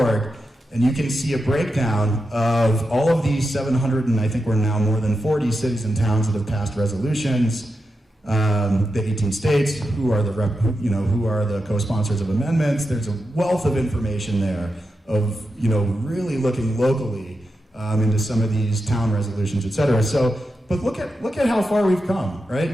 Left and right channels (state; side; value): normal; both; correlation 0.88